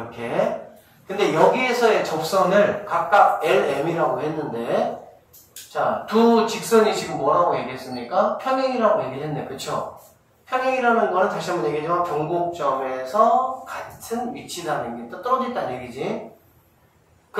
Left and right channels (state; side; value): identical; both; correlation 1.00